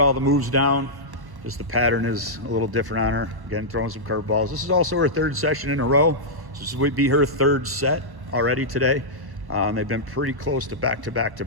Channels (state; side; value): late; left; 1.1 ms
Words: all the moves down. Just the pattern is a little different on her. Again, throwing some curveballs. This is also her third session in a row. So this would be her third set already today. And they've been pretty close to back to back to